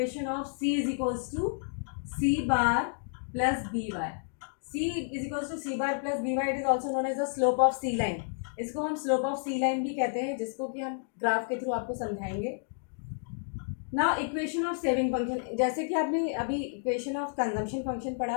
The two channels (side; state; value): right; silent; digital silence